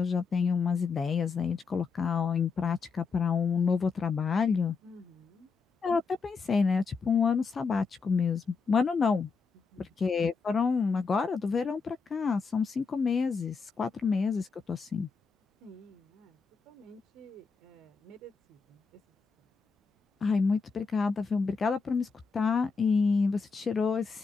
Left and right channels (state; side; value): quieter; right; 5.1 dB